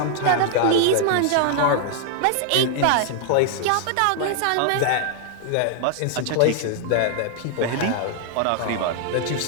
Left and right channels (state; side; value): different; both; correlation 0.00